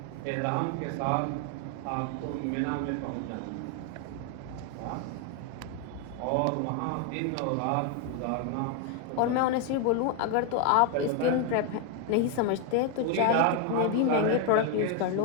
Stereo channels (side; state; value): both; different; correlation 0.01